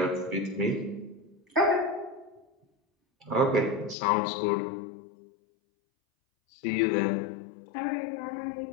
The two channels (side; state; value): right; drops out; at 4.0 s